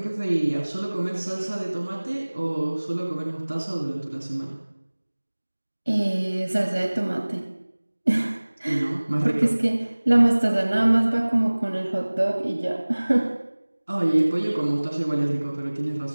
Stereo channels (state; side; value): inverted; both; correlation -1.00